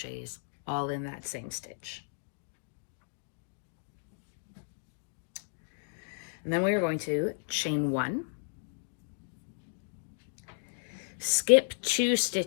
all in that same stitch. And then we are going to chain 1, skip 2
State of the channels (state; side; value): silent; right; digital silence